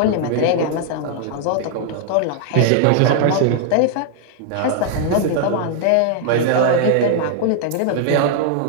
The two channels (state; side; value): different; both; correlation 0.00